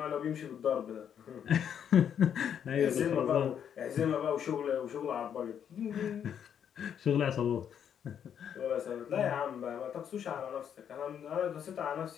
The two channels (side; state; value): right; quieter; 8.6 dB